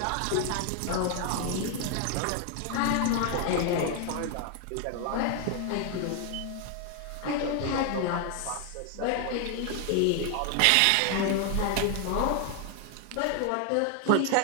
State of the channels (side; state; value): both; different; correlation 0.01